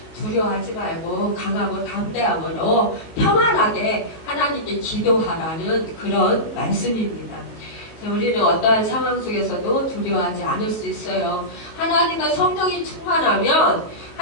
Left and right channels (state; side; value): late; right; 19 ms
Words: 두려워하지 말고 강하고 담대함으로 평안하게 하나님께 기도하라는 그런 말씀입니다. 우리는 어떠한 상황 속에서도 두려워하지 않을 수 있어요. 하나님과 성령이 충만하면